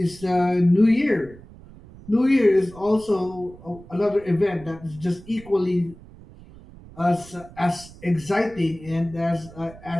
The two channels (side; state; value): right; noise; rumble, 20 dB below the sound